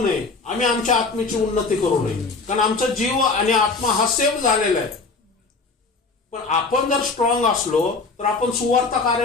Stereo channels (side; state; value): right; quieter; 4.1 dB